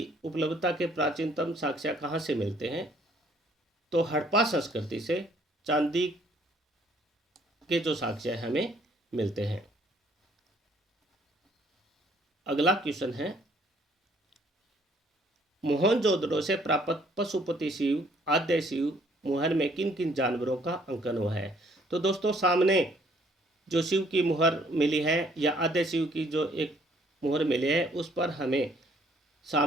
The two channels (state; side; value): normal; both; correlation 0.63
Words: उपलब्धता के प्राचीनतम साक्ष्य कहाँ से मिलते हैं? तो हड़प्पा संस्कृति से चांदी के जो साक्ष्य हमें मिलते हैं। अगला क्वेश्चन है, मोहनजोदड़ो से प्राप्त पशुपति शिव, आद्य शिव मुहर में किन किन जानवरों का अंकन हुआ है? तो दोस्तों सामने जो शिव की मुहर मिली है या आद्य शिव की जो एक मोहर मिले हैं उस पर हमें